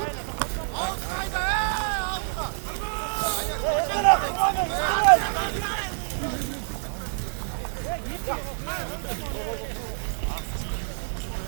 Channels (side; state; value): left; silent; digital silence